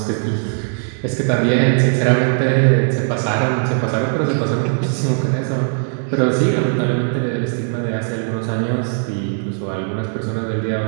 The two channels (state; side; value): silent; left; 56 dB below the other